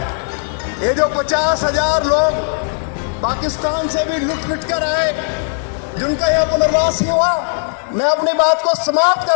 ये जो 50,000 लोग पाकिस्तान से भी लुट पिट कर आए, जिनका यह पुनर्वास ही हुआ, मैं अपनी बात को समाप्त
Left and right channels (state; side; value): silent; right; digital silence